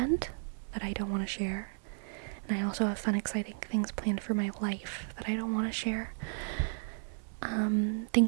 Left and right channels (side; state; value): left; silent; 55 dB below the other